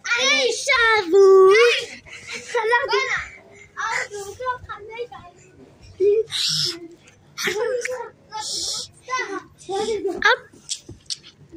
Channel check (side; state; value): both; identical; correlation 1.00